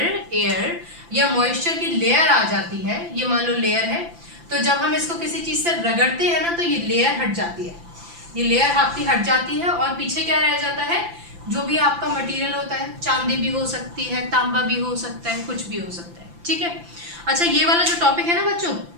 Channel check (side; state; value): left; late; 5.9 ms